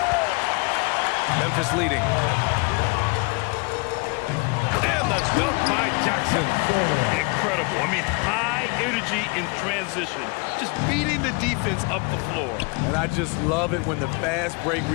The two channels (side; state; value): right; quieter; 30.4 dB